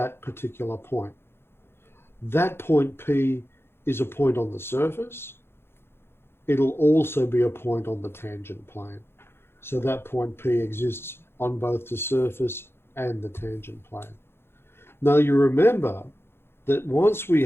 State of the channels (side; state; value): right; late; 0.11 ms